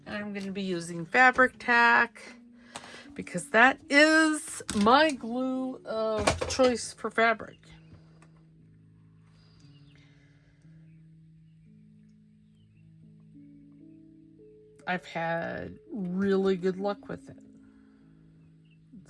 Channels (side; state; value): both; identical; correlation 1.00